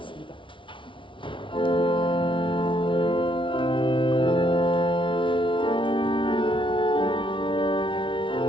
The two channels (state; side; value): late; right; 0.25 ms